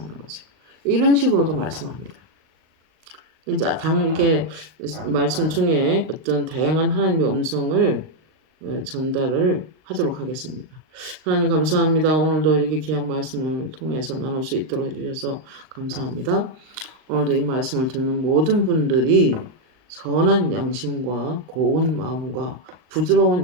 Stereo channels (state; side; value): late; left; 38 ms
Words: 거죠. 이런 식으로도 말씀합니다. 이제 이게 말씀 중에 어떤 다양한 하나님의 음성을 전달을 하도록 하겠습니다. 하나님 감사합니다. 오늘도 이렇게 귀한 말씀을 통해서 나눌 수 있도록 해주셔서 감사합니다. 오늘도 이 말씀을 듣는 모든 분들이 선한 양심과 고운 마음과 부드러운